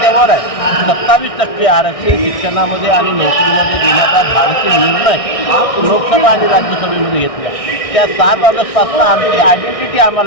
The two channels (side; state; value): right; late; 1.6 ms